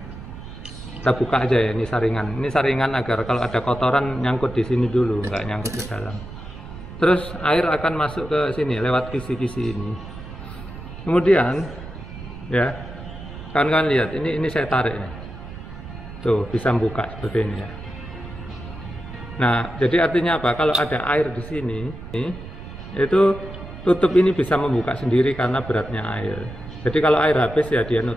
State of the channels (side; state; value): right; noise; rumble, 13 dB below the sound